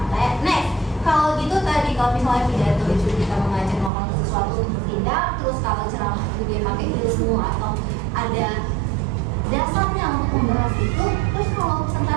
next. Kalau gitu tadi kalau misalnya pidato itu kita mengajak orang ke sesuatu untuk bertindak, terus kalau ceramah itu dia pakai ilmu atau ada dasarnya untuk membahas itu, terus kalau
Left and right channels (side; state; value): left; drops out; at 3.9 s